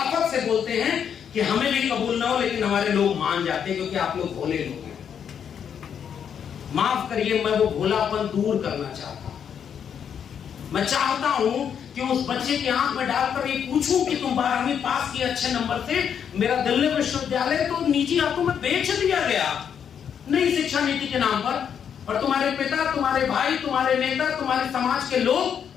से बोलते हैं कि हमें भी कबूल ना हो, लेकिन हमारे लोग मान जाते हैं क्योंकि आप लोग भोले लोग हैं। माफ करिए, मैं वो भोलापन दूर करना चाहता हूं। मैं चाहता हूं कि उस बच्चे की आंख में डालकर ये पूछूं कि तुम 12वीं पास किए अच्छे नंबर से, मेरा दिल्ली विश्वविद्यालय तो निजी हाथों में बेच दिया गया नई शिक्षा नीति के नाम पर, और तुम्हारे पिता, तुम्हारे भाई, तुम्हारे नेता, तुम्हारे समाज के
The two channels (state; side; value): quieter; right; 8.0 dB